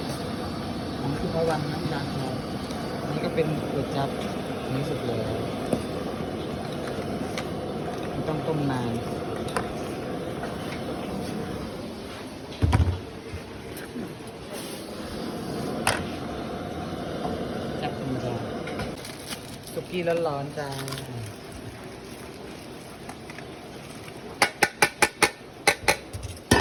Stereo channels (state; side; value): identical; both; correlation 1.00